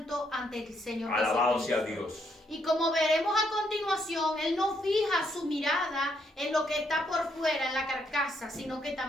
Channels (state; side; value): normal; both; correlation 0.74